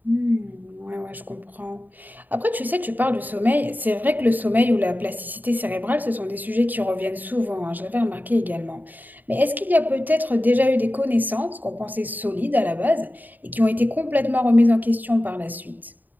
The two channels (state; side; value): late; left; 0.086 ms